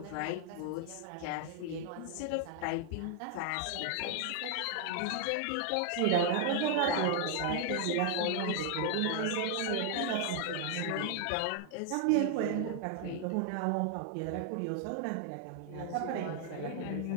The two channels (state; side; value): different; both; correlation 0.00